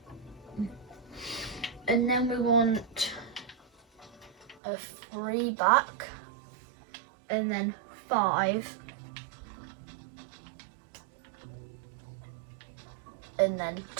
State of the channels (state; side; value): drops out; left; at 4.6 s